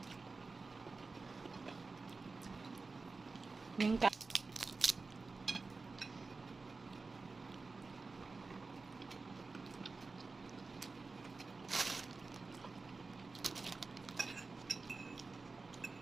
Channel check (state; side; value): quieter; left; 3.9 dB